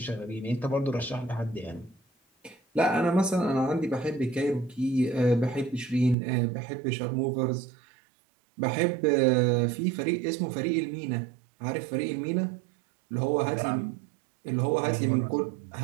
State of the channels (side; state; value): left; drops out; at 6.2 s